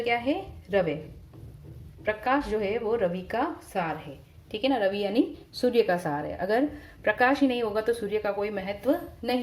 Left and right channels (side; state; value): both; identical; correlation 1.00